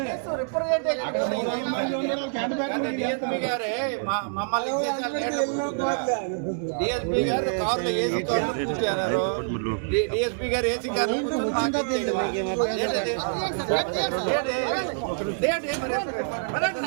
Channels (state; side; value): silent; left; digital silence